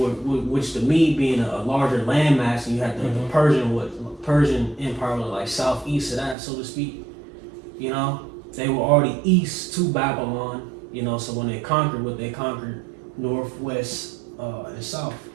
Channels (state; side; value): drops out; left; at 6.4 s